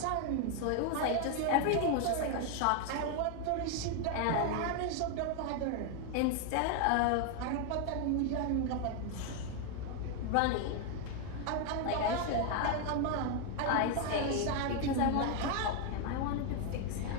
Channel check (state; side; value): different; both; correlation 0.01